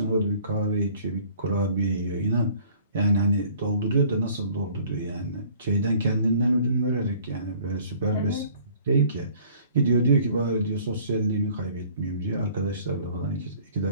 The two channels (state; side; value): inverted; both; correlation -0.54